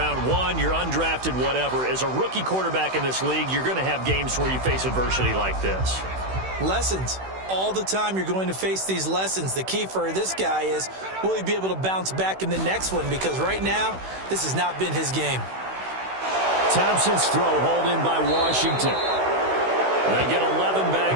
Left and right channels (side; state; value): left; late; 16 ms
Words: 1, you're undrafted, whatever. As a rookie quarterback in this league, you're going to have games where you face adversity like this. Lessons. All the time you're going to face these lessons. The key for this guy is, will he be able to bounce back in the next one? Because right now, this has not been his game. Thompson's throw hauled in by Washington. They get 11